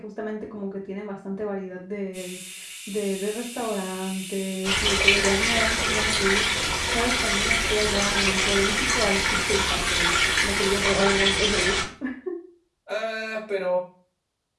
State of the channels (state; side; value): identical; both; correlation 1.00